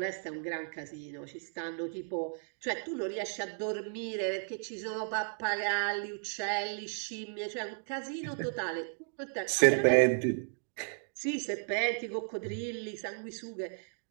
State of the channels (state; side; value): silent; left; digital silence